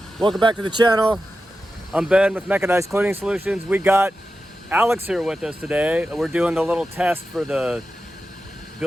welcome back to the channel. I'm Ben with Mechanized Cleaning Solutions. We got Alex here with us today. We're doing the little test for the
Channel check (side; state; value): both; normal; correlation 0.92